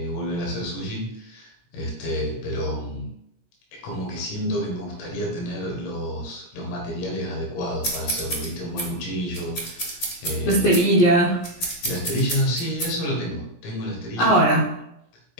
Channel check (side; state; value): right; late; 17 ms